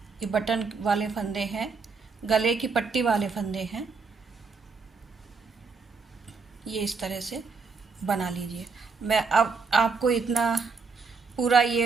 बटन वाले फंदे हैं, गले की पट्टी वाले फंदे हैं। ये इस तरह से बना लीजिए। मैं अब आपको इतना पूरा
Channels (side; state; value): left; quieter; 4.7 dB